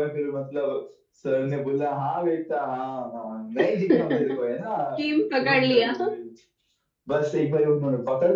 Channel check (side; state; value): both; identical; correlation 1.00